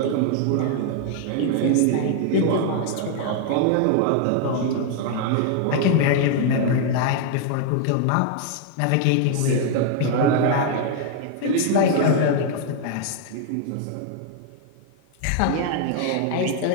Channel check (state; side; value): different; both; correlation 0.00